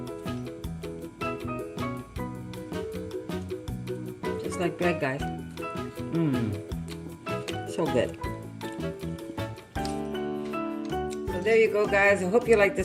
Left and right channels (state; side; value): identical; both; correlation 1.00